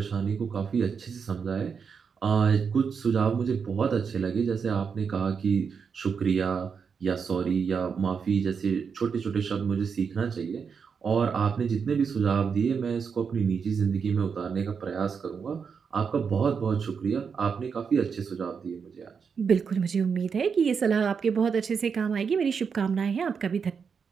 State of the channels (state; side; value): quieter; left; 6.1 dB